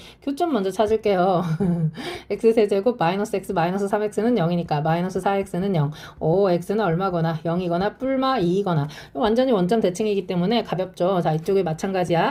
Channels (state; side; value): identical; both; correlation 1.00